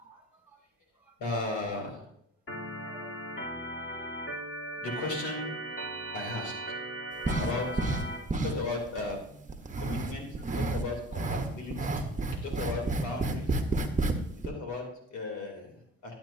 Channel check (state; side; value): normal; both; correlation 0.40